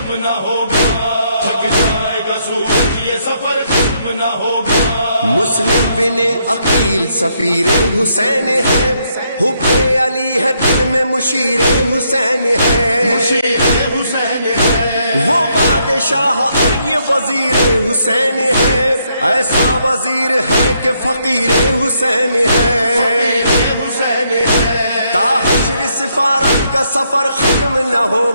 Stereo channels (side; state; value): both; inverted; correlation -0.74